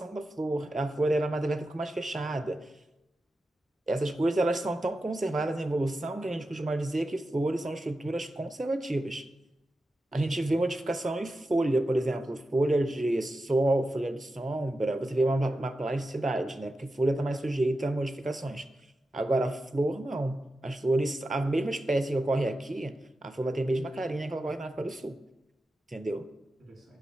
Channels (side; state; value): both; normal; correlation 0.91